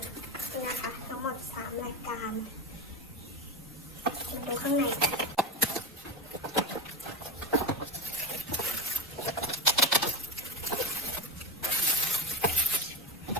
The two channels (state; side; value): normal; both; correlation 0.18